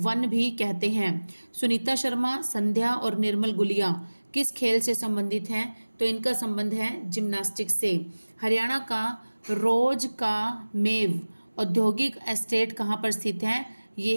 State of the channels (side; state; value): both; inverted; correlation -1.00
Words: भी कहते हैं। सुनीता शर्मा, संध्या और निर्मल गुलिया किस खेल से संबंधित हैं, तो इनका संबंध है जिम्नास्टिक्स से। हरियाणा का रोज का मेव औद्योगिक एस्टेट कहाँ पर स्थित है,